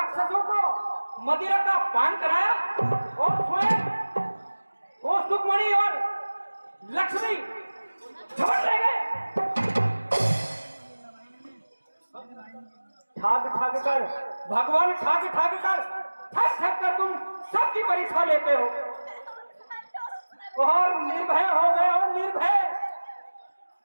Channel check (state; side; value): inverted; both; correlation -1.00